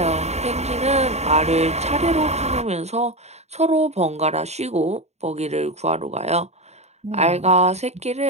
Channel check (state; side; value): late; left; 0.32 ms